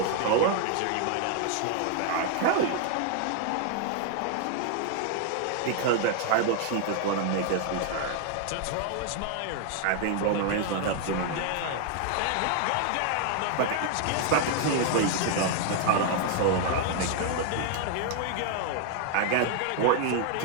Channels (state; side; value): different; both; correlation 0.00